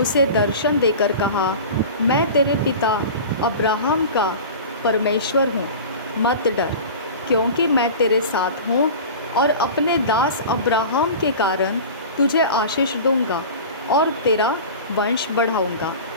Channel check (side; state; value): both; inverted; correlation -0.35